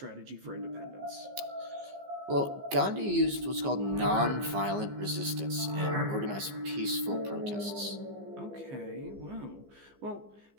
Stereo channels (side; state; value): left; late; 15 ms